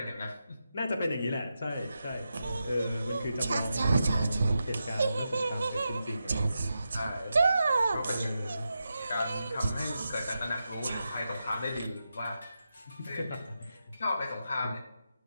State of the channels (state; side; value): inverted; both; correlation -0.88